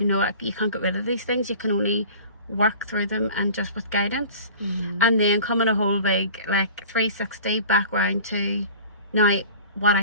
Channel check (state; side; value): inverted; both; correlation -0.42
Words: can't get rid of these things. You can only work through them and just with guidance. And then coming a whole big 360 back round to now what